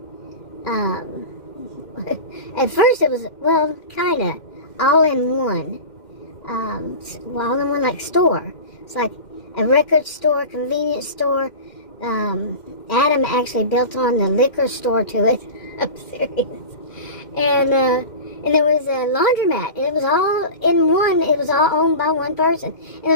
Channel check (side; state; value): right; late; 2.1 ms